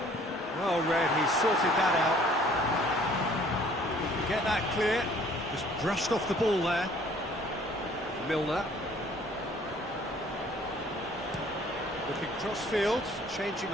Well read, he sorted that out. Get that clear. Just brushed off the ball there. Milner. Looking cross-field, changing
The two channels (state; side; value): normal; both; correlation 0.56